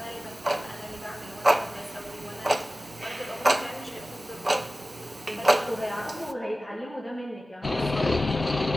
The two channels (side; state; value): both; normal; correlation 0.96